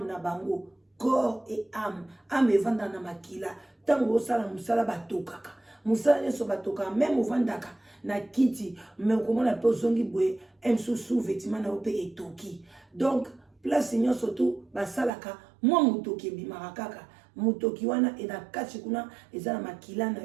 na bango, corps et âme evanda na makila. Tango osala musala batokaka musala nyeso batokaka, même ovandaka na kiti mais okomona pe ozongi boye msusu vêtement na ope etoki. Donc place nyonso tu basalaka mwa mutoki ebimaka kaka, mutoki wana ena kati kuna eza na makila na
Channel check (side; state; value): left; drops out; at 15.1 s